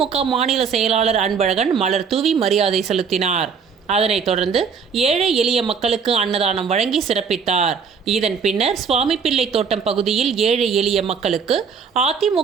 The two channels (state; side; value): quieter; left; 6.2 dB